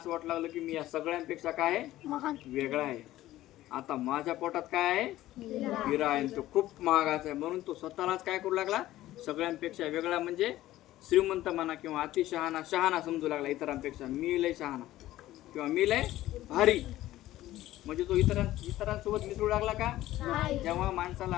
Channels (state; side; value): quieter; right; 15.2 dB